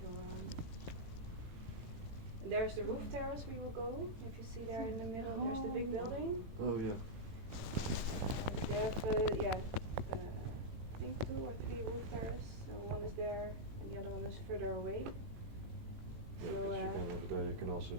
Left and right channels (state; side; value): late; left; 18 ms